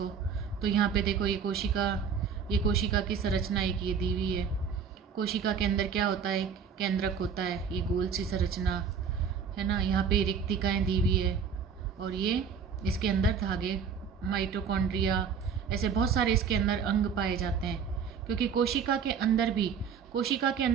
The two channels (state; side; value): quieter; left; 6.6 dB